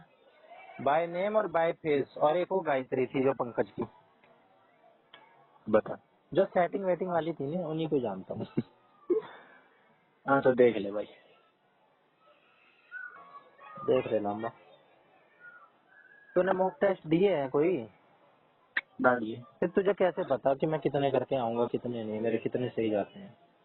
बाय नेम और बाय फेस। और एक वो गायत्री थी जो पंकज की, बता। जो सेटिंग वेटिंग वाली थी ना, उन्हीं को जानता हूँ। हाँ तो देख ले भाई। देख ले लामा। तूने मॉक टेस्ट दिए हैं कोई? ना लिए फिर तुझे कैसे पता कि मैं कितने करके आऊंगा कितने नहीं, मेरे कितने सही जाते हैं?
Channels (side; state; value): both; identical; correlation 1.00